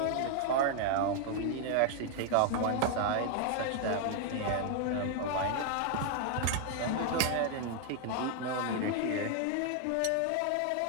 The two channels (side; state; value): both; different; correlation 0.00